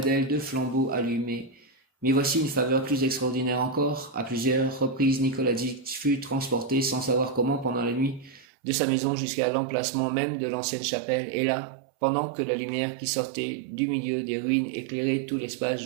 d'elle 2 flambeaux allumés. Mais voici une faveur plus extraordinaire encore. À plusieurs reprises, Nikolazitch fut transporté sans savoir comment pendant la nuit de sa maison jusqu'à l'emplacement même de l'ancienne chapelle, et là, pendant que la lumière qui sortait du milieu des ruines éclairait tout l'espace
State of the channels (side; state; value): left; drops out; at 8.5 s